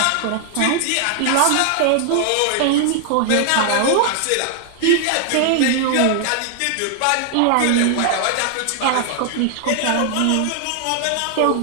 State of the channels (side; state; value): both; different; correlation 0.00